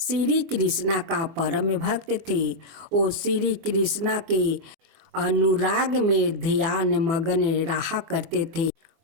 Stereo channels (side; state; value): left; late; 24 ms